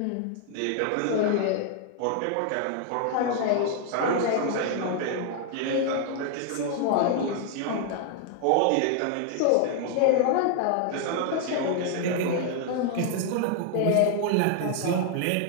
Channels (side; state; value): both; different; correlation 0.00